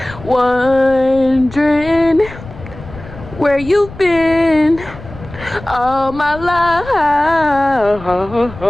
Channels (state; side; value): noise; left; rumble, 16 dB below the sound